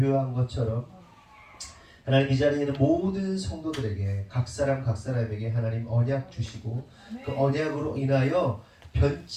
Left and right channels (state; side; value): identical; both; correlation 1.00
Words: 것처럼 하나님, 이 자리에 있는 모든 성도들에게 각 사람에게 하나님 언약 주시고 그 언약으로 인하여